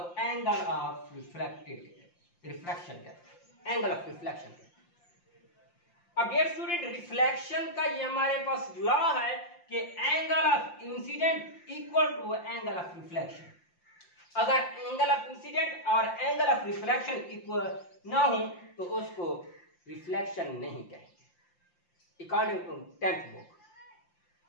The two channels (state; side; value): late; right; 5.7 ms